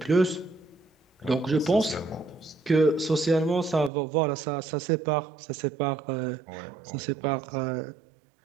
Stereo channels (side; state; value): left; drops out; at 3.9 s